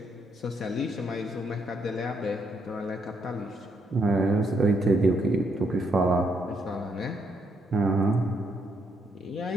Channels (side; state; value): both; normal; correlation 0.75